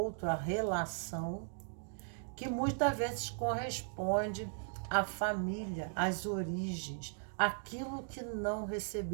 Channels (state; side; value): silent; left; digital silence